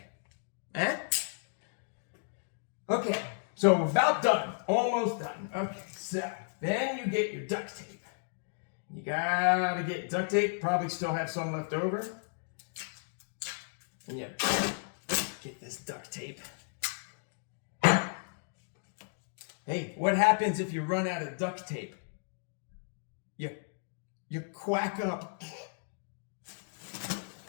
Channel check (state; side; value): silent; right; digital silence